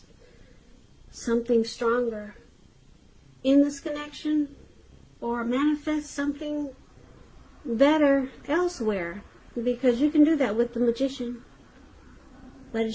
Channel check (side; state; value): both; identical; correlation 1.00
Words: something stronger in this connection, or manifest something better elsewhere, because you can do that with the Magician. But